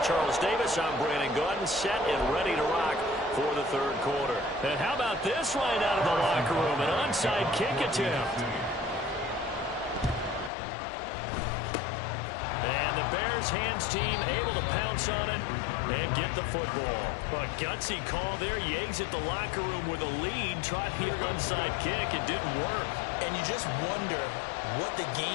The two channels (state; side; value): drops out; right; at 10.5 s